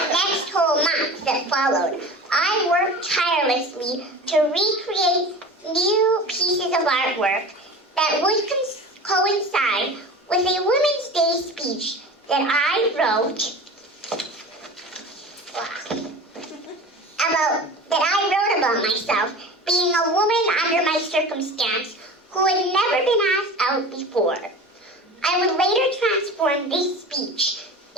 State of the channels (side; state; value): both; normal; correlation 0.35